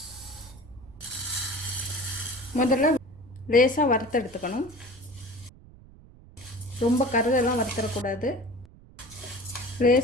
முதல்ல லேசாக வறுத்து எடுத்துக்கணும். ரொம்ப கருதெல்லாம் வறுத்துடக்கூடாது.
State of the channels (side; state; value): right; noise; rumble, 22 dB below the sound